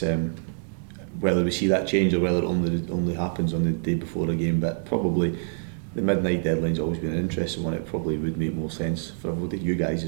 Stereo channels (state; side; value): silent; left; digital silence